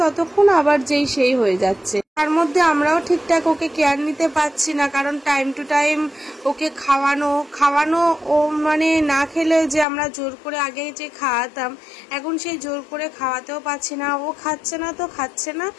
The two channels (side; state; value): right; drops out; at 9.9 s